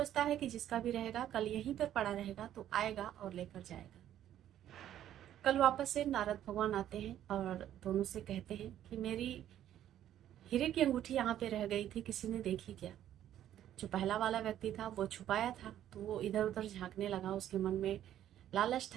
है कि जिसका भी रहेगा कल यहीं पर पड़ा रहेगा तो आएगा और लेकर जाएगा। कल वापस से नारद भगवान आते हैं और दोनों से कहते हैं कि मेरी हीरे की अंगूठी यहाँ पे रह गई थी, किसी ने देखी क्या? जो पहला वाला व्यक्ति था वो छुपाया था, तो वो इधर उधर झांकने लगा। उसके मन में लालच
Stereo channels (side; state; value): left; quieter; 11.5 dB